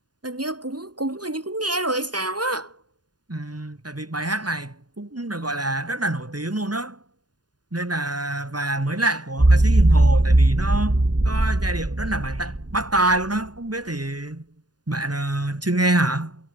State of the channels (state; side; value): late; left; 0.69 ms